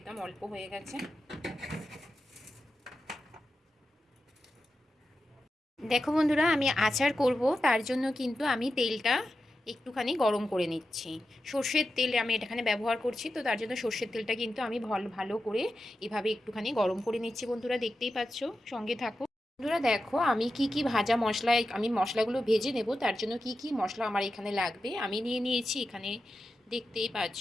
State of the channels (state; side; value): normal; both; correlation 0.91